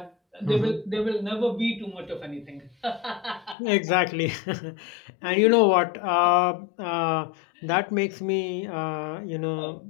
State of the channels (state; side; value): drops out; right; at 3.6 s